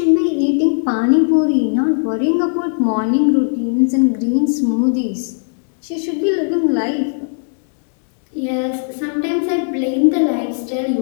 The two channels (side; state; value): right; silent; digital silence